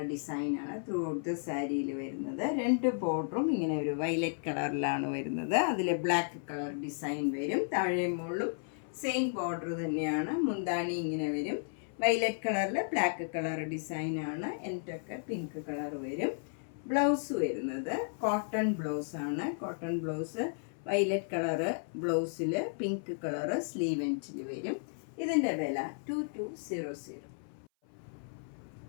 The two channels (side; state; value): right; silent; 55 dB below the other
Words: ഡിസൈനാണ് ത്രൂ ഔട്ട് ദ സാരിയിൽ വരുന്നത്. രണ്ട് ബോർഡറും ഇങ്ങനെ ഒരു വയലറ്റ് കളറിലാണ് വരുന്നത്. അതിൽ ബ്ലാക്ക് കളർ ഡിസൈൻ വരും. താഴെ മുകളിലും സെയിം ബോർഡർ തന്നെയാണ്. മുന്താണി ഇങ്ങനെ വരും. വയലറ്റ് കളറിൽ ബ്ലാക്ക് കളർ ഡിസൈനാണ്. എന്നിട്ടൊക്കെ പിങ്ക് കളർ വരും. ബ്ലൗസ് വരുന്നത് കോട്ടൺ ബ്ലൗസ് ആണ്. കോട്ടൺ ബ്ലൗസ് വയലറ്റ് കളറ് ബ്ലൗസിൽ പിങ്ക് കളറ് സ്ലീവ് എൻഡിൽ വരും. ഇതിൻ്റെ വില 2200.